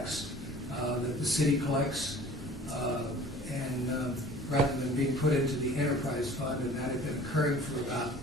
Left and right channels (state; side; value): normal; both; correlation 0.46